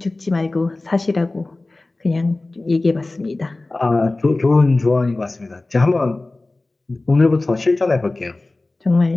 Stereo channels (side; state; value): right; quieter; 3.0 dB